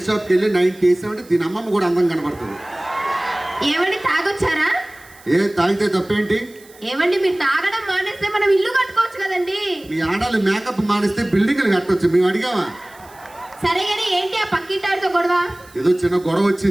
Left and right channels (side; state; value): right; noise; hiss, 25 dB below the sound